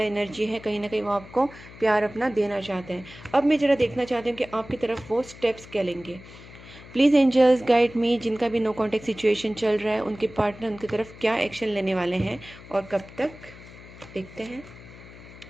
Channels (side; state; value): left; noise; hum, 18 dB below the sound